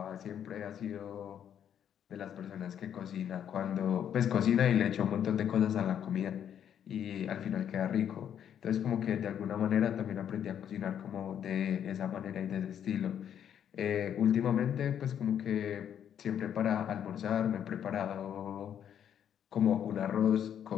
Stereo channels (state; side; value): quieter; right; 9.3 dB